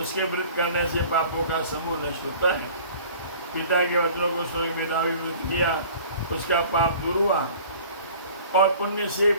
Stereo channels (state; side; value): inverted; both; correlation -0.47